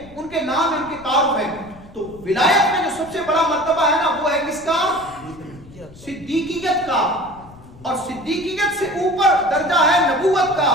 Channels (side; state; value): left; noise; rumble, 21 dB below the sound